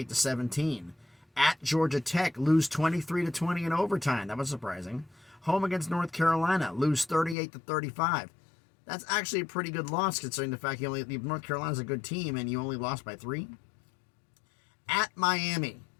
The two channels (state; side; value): drops out; right; at 7.4 s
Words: At Georgia Tech, lose 23-20 in overtime. That was surprising. Home against North Carolina, lose 38-35. That's actually a pretty good loss considering the fact North Carolina's a good team and you only lost by 3. At Miami,